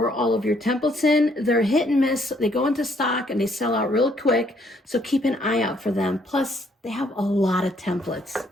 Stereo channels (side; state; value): both; normal; correlation 0.67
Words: all of your templates in. They're hit and miss. They go into stock and they sell out real quick. So keep an eye out for them. Plus, they have a lot of templates.